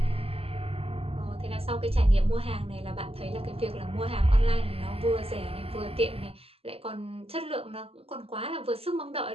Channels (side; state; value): left; late; 0.28 ms